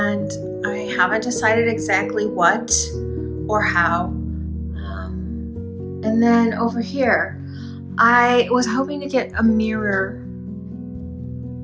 I haven't decided exactly what or how. And then over here, I was hoping to get a mirror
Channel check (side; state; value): both; identical; correlation 1.00